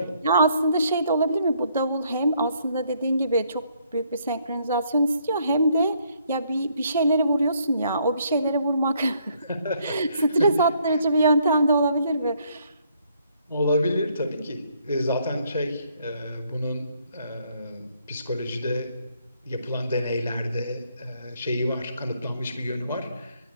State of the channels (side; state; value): both; inverted; correlation -0.69